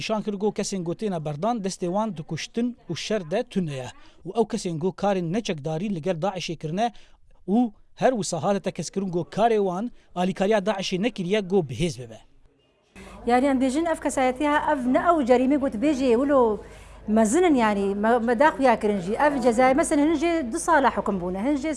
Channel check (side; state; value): both; identical; correlation 1.00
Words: کرگو کسین گو تین بردان دستوان دکشتن و شر ده تنه و او کسین گو کارین نچکداری لگر داعش کرنه و هر وساهات تکسکرون گو کاروان الیکاریا داعش نکریه گو بهز ببه يعني ام بيجن اف كسايتها اف نأو جريمه قلت بيجي ولو مزنن يعني مداخ يا كرنجي اف جزاء مثلا هنجي 2 صالح حكم بونا هنجي